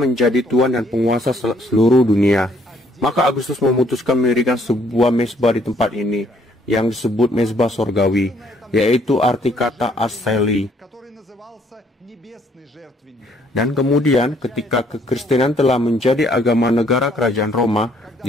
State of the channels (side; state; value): both; normal; correlation 0.65